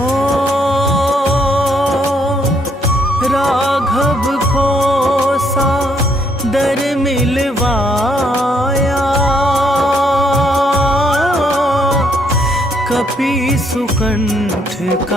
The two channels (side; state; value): both; normal; correlation 0.71